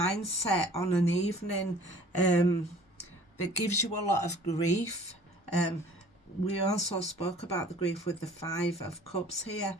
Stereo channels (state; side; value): normal; both; correlation 0.50